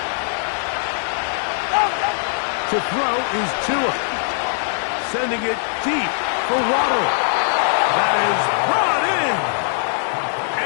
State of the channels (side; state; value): right; silent; digital silence